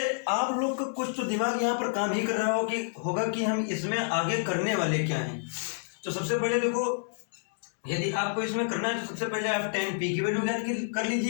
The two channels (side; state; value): right; silent; digital silence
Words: आप लोग का कुछ तो दिमाग यहाँ पर काम ही कर रहा होगा कि हम इसमें आगे करने वाले क्या हैं। तो सबसे पहले देखो, यदि आपको इसमें करना है तो सबसे पहले आप tan p की वैल्यू ज्ञात कर